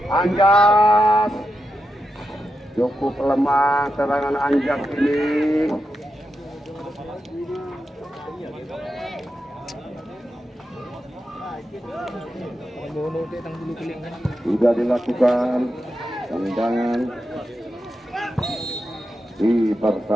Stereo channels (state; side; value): normal; both; correlation 0.87